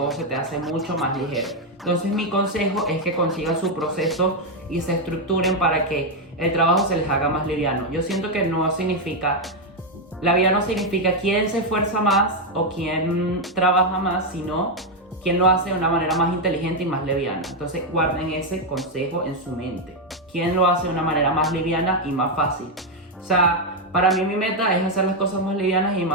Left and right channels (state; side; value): normal; both; correlation 0.03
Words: se te hace mucho más ligero. Entonces mi consejo es que consigan su proceso y se estructuren para que el trabajo se les haga más liviano. Yo siento que la vida no significa quién se esfuerza más o quién trabaja más, sino quién lo hace de una manera más inteligente y más liviana. Entonces guarden ese consejo en su mente. ¿Quién lo hace de una manera más liviana y más fácil? O sea, para mí mi meta es hacer las cosas más livianas y